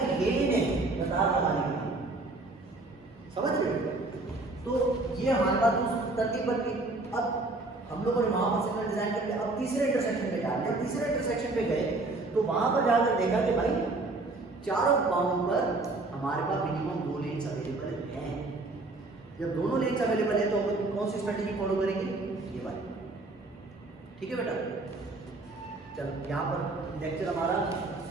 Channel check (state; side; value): quieter; left; 3.1 dB